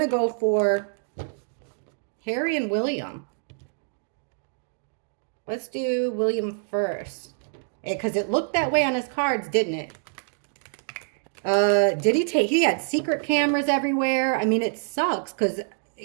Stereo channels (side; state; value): left; silent; digital silence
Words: go for Harry and William. Let's do William first. Because it looked that way on his cards, didn't it? He had secret cameras everywhere. I mean, it sucks because,